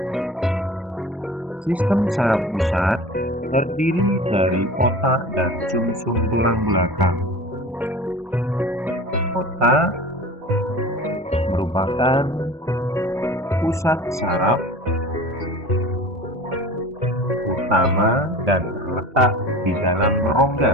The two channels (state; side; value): normal; both; correlation 0.38